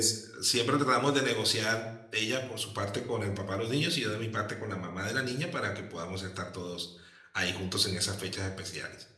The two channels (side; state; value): both; identical; correlation 1.00